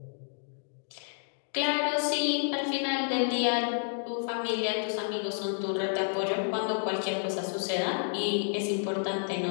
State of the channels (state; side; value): silent; right; digital silence